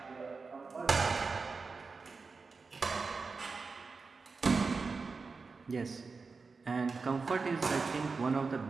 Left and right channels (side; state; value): left; quieter; 4.5 dB